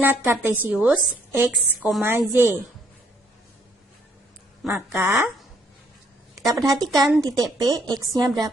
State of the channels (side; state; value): both; normal; correlation 0.67